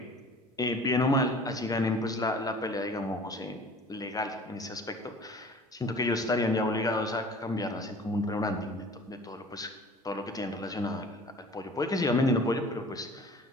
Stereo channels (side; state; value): both; normal; correlation 0.45